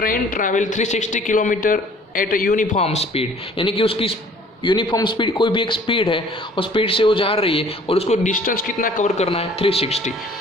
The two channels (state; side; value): normal; both; correlation 0.53